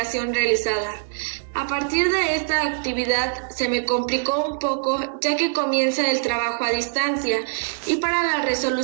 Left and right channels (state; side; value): silent; left; digital silence